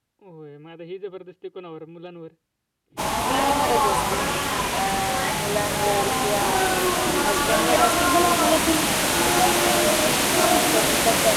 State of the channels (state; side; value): identical; both; correlation 1.00